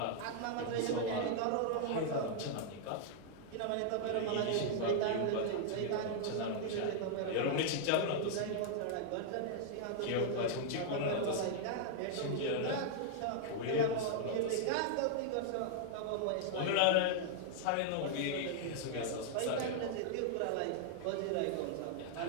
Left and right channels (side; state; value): both; different; correlation -0.01